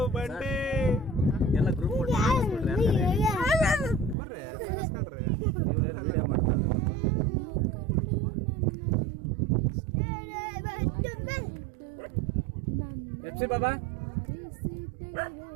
ಬಂಡೆ ಎಲ್ಲ ಗ್ರೂಪ್ ಬರ್ರಿ ಕಳಿಸ್ಕೊಳ್ರಿ. ವಿಡಿಯೋ ಮಾಡ್ತಾರೆ. ಎಫ್ಸಿ ಬಾಬಾ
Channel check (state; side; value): drops out; left; at 4.2 s